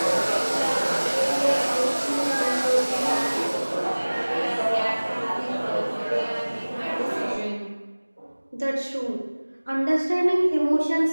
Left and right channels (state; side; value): inverted; both; correlation -1.00